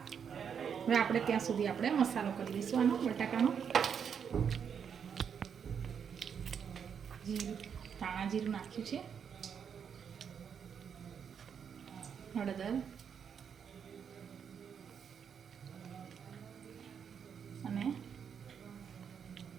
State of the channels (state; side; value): quieter; left; 7.3 dB